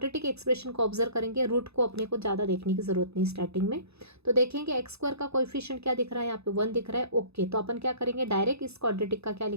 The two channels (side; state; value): left; late; 0.79 ms